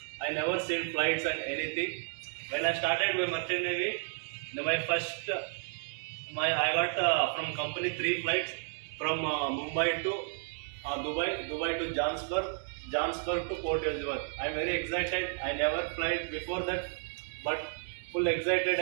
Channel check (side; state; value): left; silent; 56 dB below the other